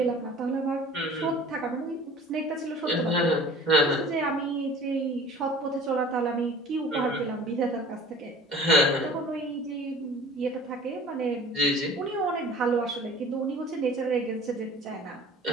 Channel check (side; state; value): both; normal; correlation 0.45